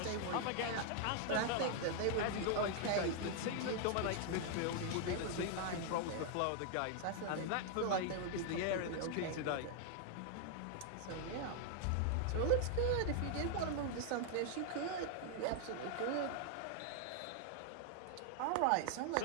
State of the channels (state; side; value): different; both; correlation 0.00